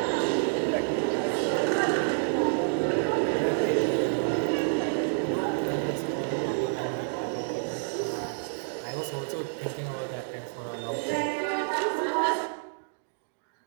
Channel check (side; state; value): left; silent; digital silence